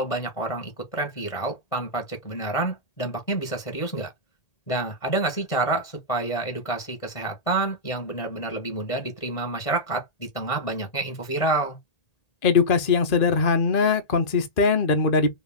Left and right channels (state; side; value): late; right; 1.8 ms